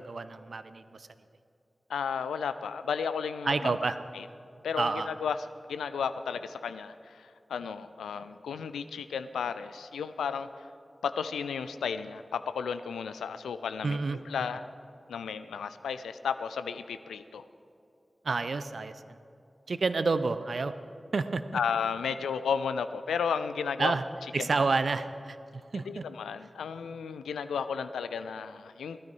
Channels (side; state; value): both; normal; correlation 0.82